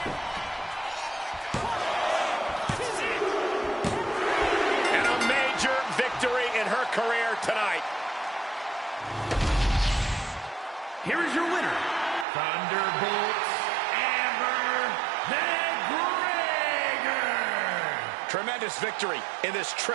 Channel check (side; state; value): left; drops out; at 12.2 s